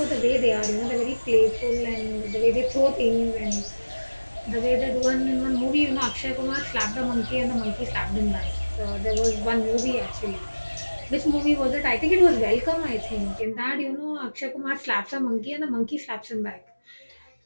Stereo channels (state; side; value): inverted; both; correlation -1.00